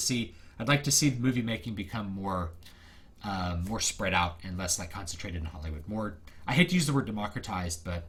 movie making become more spread out and less like concentrated in Hollywood. More, I hate to use the word democratized, but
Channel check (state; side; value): identical; both; correlation 1.00